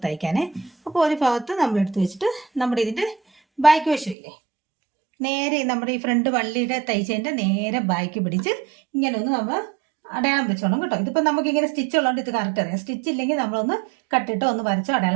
തയ്ക്കാനേ. അപ്പോൾ ഒരു ഭാഗത്ത് നമ്മൾ എടുത്ത് വെച്ചിട്ട് നമ്മുടെ ഇതിൻ്റെ ബാക്ക് വശമില്ലേ, നേരെ നമ്മുടെ ഈ ഫ്രണ്ട് വള്ളിയുടെ തയ്ച്ചതിൻ്റെ നേരെ ബാക്ക് പിടിച്ച് ഇങ്ങനെ ഒന്ന് നമ്മൾ അടയാളം വെച്ചോണം കേട്ടോ. ഇതിപ്പോൾ നമുക്കിങ്ങനെ സ്റ്റിച്ച് ഉള്ളതുകൊണ്ട് ഇത് കറക്റ്റ് അറിയാം. സ്റ്റിച്ച് ഇല്ലെങ്കിൽ നമ്മളൊന്ന് കട്ടിട്ട് ഒന്ന് വരച്ചോ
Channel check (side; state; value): left; drops out; at 4.2 s